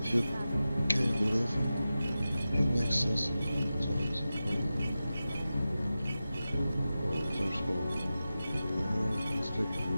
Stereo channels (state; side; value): inverted; both; correlation -0.94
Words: If you can't believe him, it makes sense sometimes. There's hope. Let's take it from